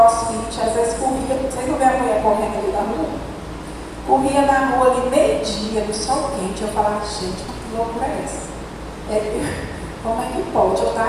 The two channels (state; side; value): identical; both; correlation 1.00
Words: às vezes corria, vocês não vê a mulher correndo ali na rua? Corria na rua ali meio-dia, no sol quente. Eu falava, gente, que loucura é essa? Como é que pode eu estar